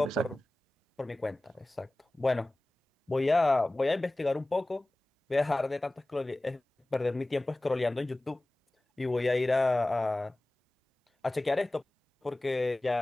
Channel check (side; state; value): both; normal; correlation 0.98